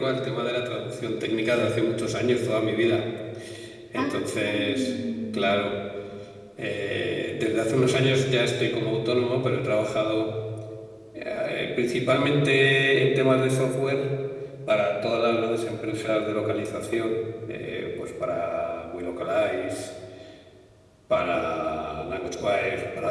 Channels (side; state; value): both; identical; correlation 1.00